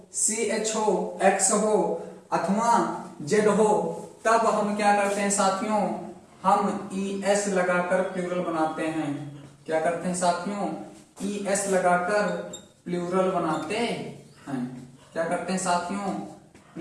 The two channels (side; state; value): both; identical; correlation 1.00